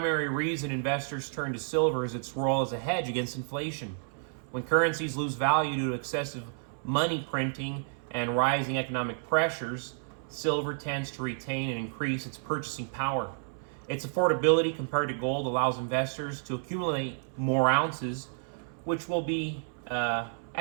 reason investors turn to silver is its role as a hedge against inflation. When currencies lose value due to excessive money printing and rising economic pressures, silver tends to retain and increase its purchasing power. Its affordability compared to gold allows investors to accumulate more ounces, which will be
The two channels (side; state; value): left; silent; 57 dB below the other